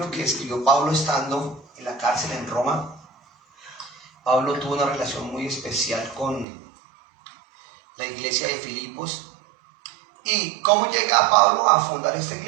que escribió Pablo estando en la cárcel en Roma. Pablo tuvo una relación muy especial con la iglesia de Filipos. ¿Y cómo llega Pablo a fundar esta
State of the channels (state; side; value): drops out; left; at 6.5 s